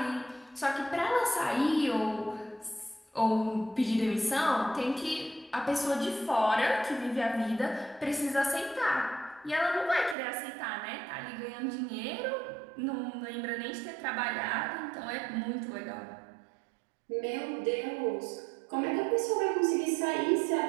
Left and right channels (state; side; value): drops out; left; at 10.2 s